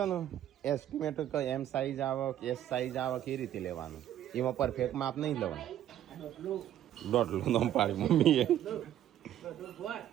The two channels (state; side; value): quieter; left; 11.6 dB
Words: ને એસ્ટિમેટ એમ સાઈઝ આવે કે એસ સાઈઝ આવે કે એ રીતે લેવાનું એમાં પરફેક્ટ માપ નહીં લેવાનું દોઢલું નામ પાડી મમ્મીએ